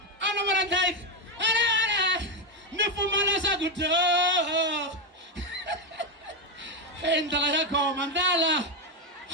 I know what I'm like. Nifumana good. And I come Mandala.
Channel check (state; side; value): normal; both; correlation 0.08